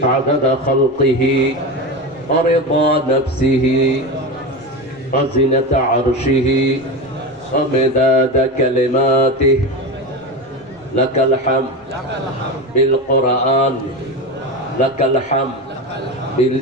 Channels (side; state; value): both; normal; correlation 0.22